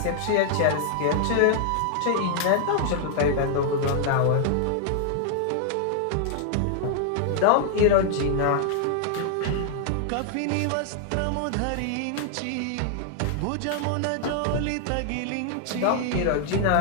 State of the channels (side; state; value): both; different; correlation 0.00